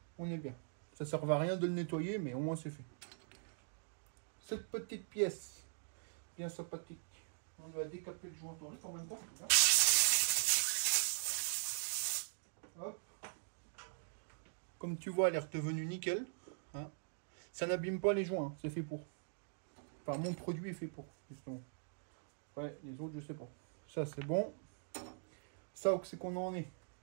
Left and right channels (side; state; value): left; silent; digital silence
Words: On est bien. Ça ne sert à rien de le nettoyer, mais au moins c'est fait. Cette petite pièce, bien sympathique. On va décaper le joint en même temps. Hop. Comme tu vois, elle est redevenue nickel. Hein. Ça n'abîme pas les joints, hein. C'est fait pour. Enfin, mon produit est fait pour, justement. Ouais, les autres, je sais pas. Ça, c'est bon. Ça, c'est qu'on en est.